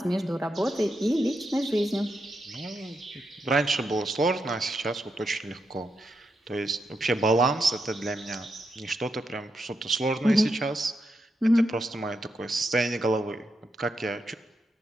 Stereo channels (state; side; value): normal; both; correlation 0.84